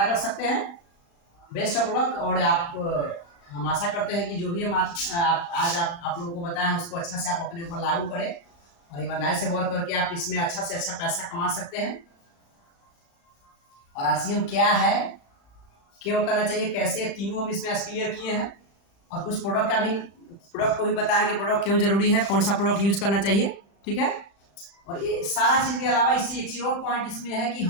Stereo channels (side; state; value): right; late; 35 ms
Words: कर सकते हैं। Best of luck. और आप, हम आशा करते हैं कि जो भी हम आज आप लोगों को बताएं उसको अच्छा से आप अपने ऊपर लागू करें और ईमानदारी से वर्क करके आप इसमें अच्छा से अच्छा पैसा कमा सकते हैं। और RCM क्या है, क्यों करना चाहिए, कैसे, तीनों हम इसमें आज क्लियर किए हैं। और कुछ प्रोडक्ट को भी बताया कि प्रोडक्ट क्यों जरूरी है, कौन सा प्रोडक्ट यूज करना चाहिए, ठीक है। और ये सारा चीज के अलावा इससे एक चीज और पॉइंट इसमें है कि